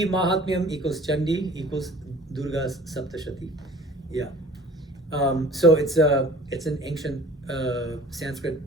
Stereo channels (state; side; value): normal; both; correlation 0.47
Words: Mahatmyam equals Chandi equals Durga Saptashati. Yeah. So it's an ancient Sanskrit